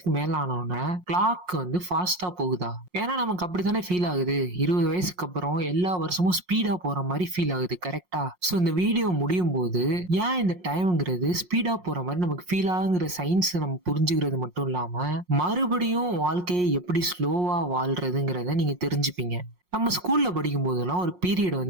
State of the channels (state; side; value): late; left; 5.6 ms